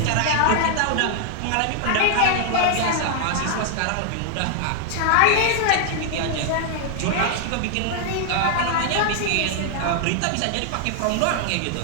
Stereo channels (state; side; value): different; both; correlation 0.00